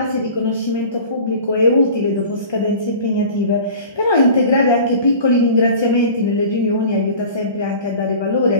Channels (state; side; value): inverted; both; correlation -0.41